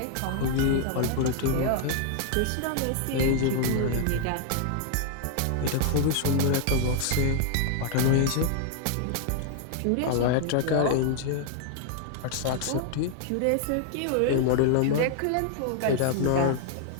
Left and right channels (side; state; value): both; different; correlation 0.00